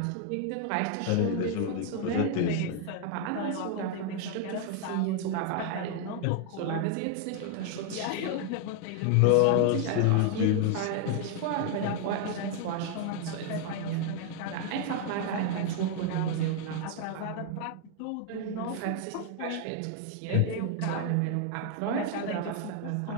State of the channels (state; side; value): different; both; correlation 0.00